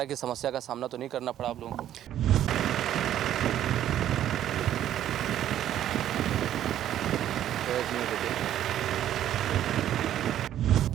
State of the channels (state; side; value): quieter; left; 11.5 dB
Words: की समस्या का सामना तो नहीं करना पड़ा आप लोगों को?